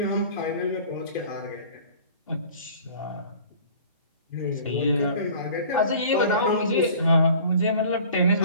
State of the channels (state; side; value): inverted; both; correlation -0.46